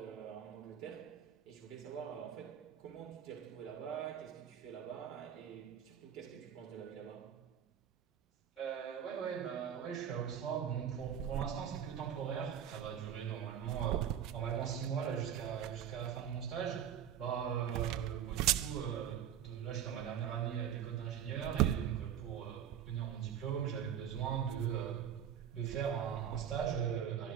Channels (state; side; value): quieter; left; 9.3 dB